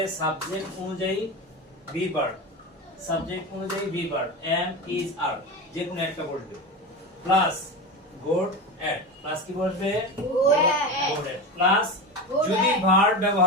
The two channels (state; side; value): normal; both; correlation 0.22